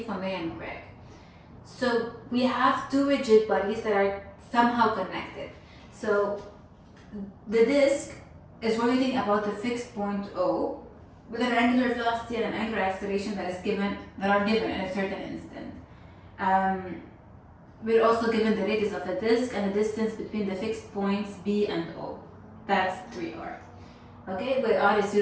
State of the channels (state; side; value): identical; both; correlation 1.00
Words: from Ray and Greg. So we have two rigid bodies that are somehow connected. So the disk is rotating about a fixed point O with an angular velocity and an angular acceleration that are given in a certain instant. We're also given the radius of the disk and the distance between the fixed points B and O. That's 3r. Okay, where r is